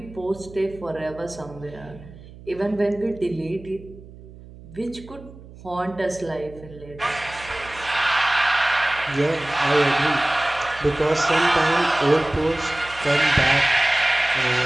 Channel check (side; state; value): right; noise; hum, 19 dB below the sound